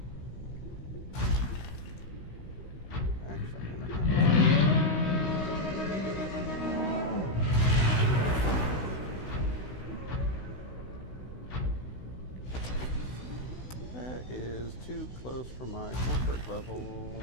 Is too close for my comfort level.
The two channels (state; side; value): late; right; 16 ms